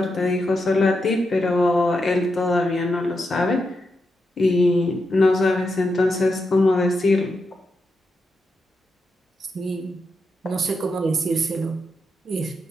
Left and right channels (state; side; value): normal; both; correlation 0.86